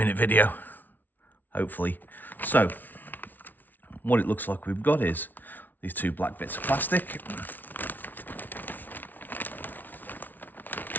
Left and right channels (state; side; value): late; right; 0.085 ms